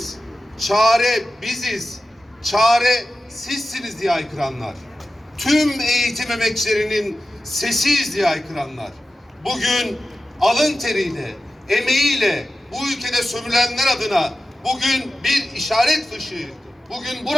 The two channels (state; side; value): normal; both; correlation 0.93